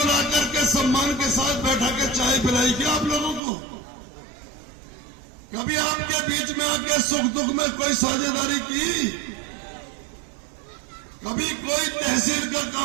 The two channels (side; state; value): left; drops out; at 3.4 s